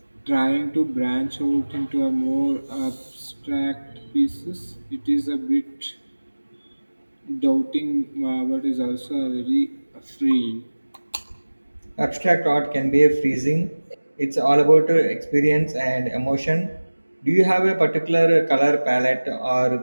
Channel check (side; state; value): both; inverted; correlation -1.00